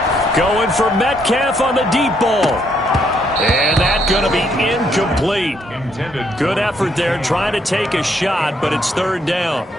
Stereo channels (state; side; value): normal; both; correlation 0.72